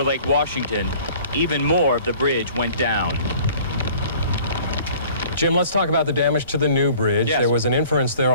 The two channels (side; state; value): both; inverted; correlation -0.51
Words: Lake Washington, even more of the bridge went down. Jim, let's talk about the damage to the new bridge. Yes. There was an inference there